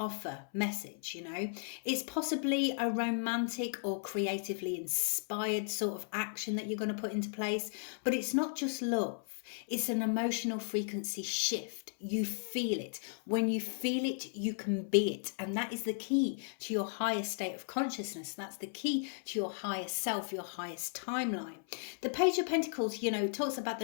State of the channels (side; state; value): right; silent; 54 dB below the other